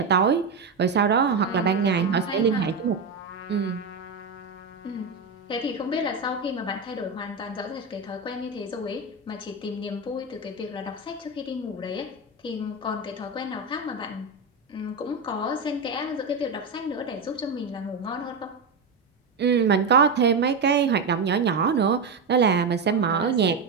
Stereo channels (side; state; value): left; quieter; 4.2 dB